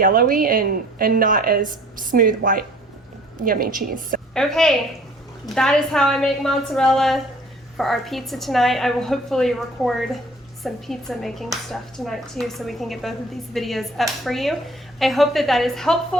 and not as smooth, white, yummy cheese. So, okay, that is how I make mozzarella for our pizza tonight. I will hopefully record some pizza making stuff tonight too, so we can get both of these videos up for you. I hope that that is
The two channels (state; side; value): normal; both; correlation 0.52